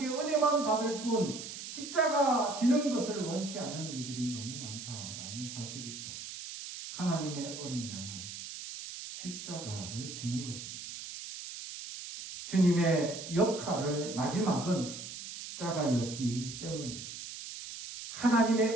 은혜만 받을 뿐 십자가 지는 것을 원치 않는 이들이 너무 많다라는 사실이죠. 하나님의 어린 양은 십자가를 지는 것입니다. 주님의 역할의 마지막은 십자가였기 때문입니다.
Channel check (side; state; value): right; noise; hiss, 9 dB below the sound